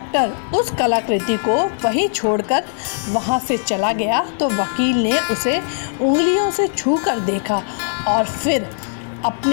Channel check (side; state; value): right; silent; digital silence